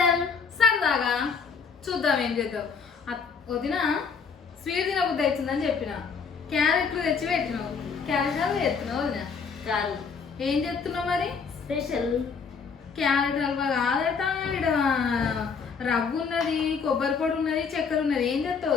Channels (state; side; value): quieter; right; 5.7 dB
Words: సరదాగా చూద్దాం ఏం చేద్దాం. వదిన స్వీట్ తినబుద్ధి అవుతుందని చెప్పిన క్యారెట్లు తెచ్చి పెట్టినావు. క్యారెట్ హల్వా చేస్తున్నావు వదిన కాదు, ఏం చేస్తున్నావు మరి? స్పెషల్ క్యారెట్ హల్వా కాదట, ఇక్కడ రవ్వు ఉన్నది, కొబ్బరి పొడి ఉన్నది, చక్కెర ఉన్నది. ఏం చేస్తావు